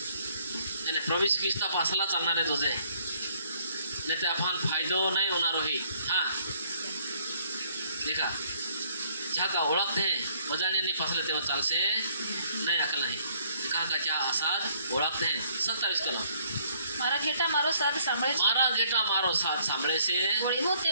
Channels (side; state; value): both; inverted; correlation -0.65